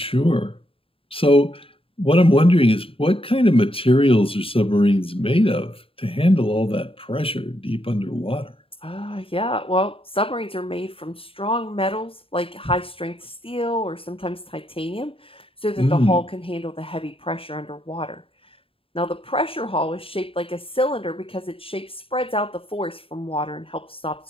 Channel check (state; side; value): late; right; 0.27 ms